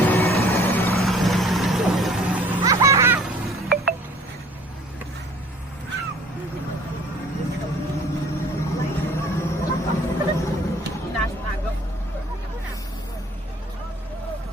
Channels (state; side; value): normal; both; correlation 0.54